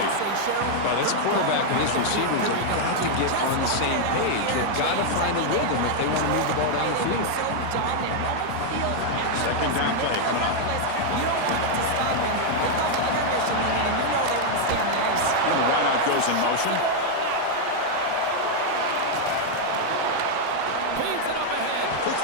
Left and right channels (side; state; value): both; different; correlation 0.00